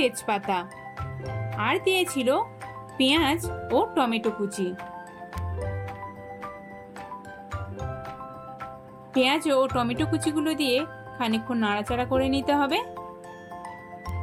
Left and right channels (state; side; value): identical; both; correlation 1.00